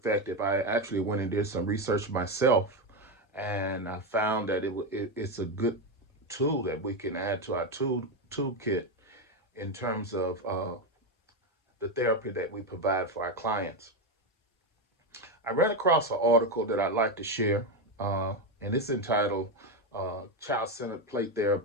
I actually went and did some research myself, and I found that it's a good tool that we can add to our toolkit in terms of the therapy that we provide for our clients. I ran across an article that I'd like to share, and it's entitled Child Centered Play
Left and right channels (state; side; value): normal; both; correlation 0.11